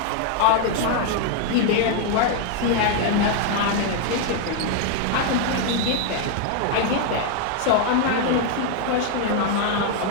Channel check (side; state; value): both; different; correlation 0.00